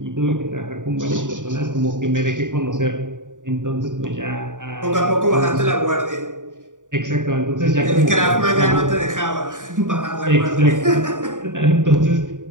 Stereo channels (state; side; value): late; left; 0.87 ms